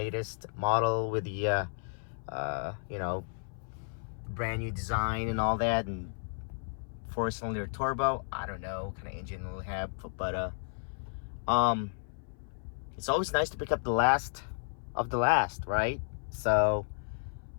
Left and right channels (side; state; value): right; silent; 56 dB below the other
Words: model with the you know, brand new design and all that, and 4-cylinder turbo. I don't know what kind of engine it'll have, but it's always nice to pick up the last of the last, right? So